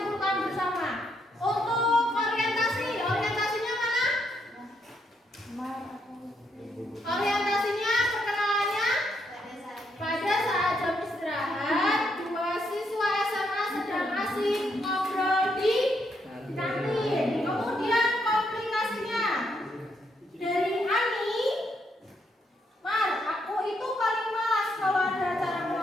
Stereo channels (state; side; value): normal; both; correlation 0.76